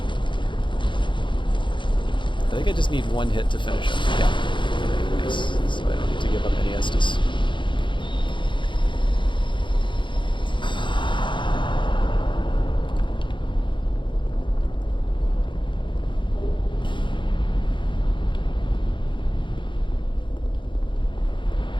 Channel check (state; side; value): late; right; 0.23 ms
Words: I think I just need one hit to finish him. Yeah. Nice. So I don't need to give up any Estus.